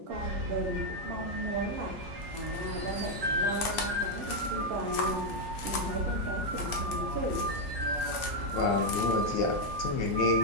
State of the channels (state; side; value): normal; both; correlation 0.01